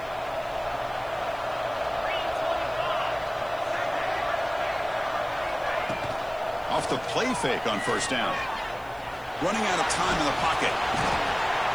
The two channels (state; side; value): noise; right; hiss, 25 dB below the sound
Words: Off the play fake on first down. Running out of time in the pocket.